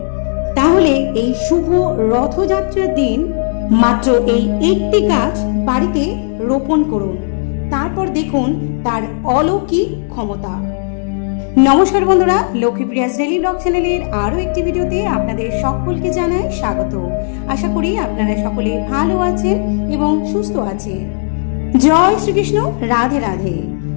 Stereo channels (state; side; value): silent; right; digital silence